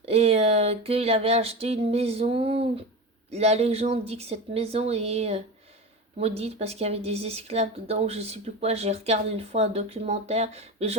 Et qu'il avait acheté une maison. La légende dit que cette maison est maudite parce qu'il y avait des esclaves dedans, je sais plus quoi. J'ai regardé une fois un documentaire, mais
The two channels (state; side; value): normal; both; correlation 0.25